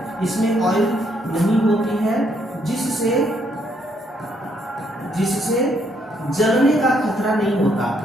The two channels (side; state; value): both; normal; correlation 0.72